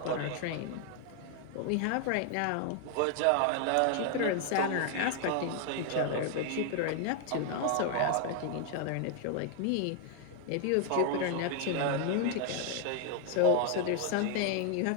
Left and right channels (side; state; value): both; different; correlation 0.00